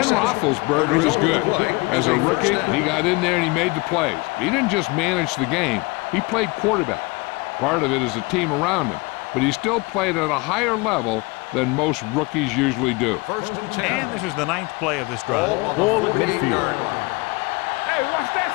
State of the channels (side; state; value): right; quieter; 25.4 dB